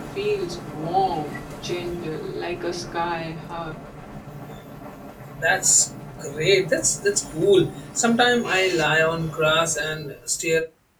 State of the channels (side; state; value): both; identical; correlation 1.00